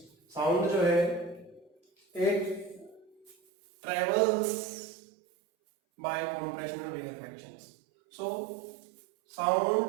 साउंड जो है एक travels by compressional reactions. So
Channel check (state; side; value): drops out; left; at 3.4 s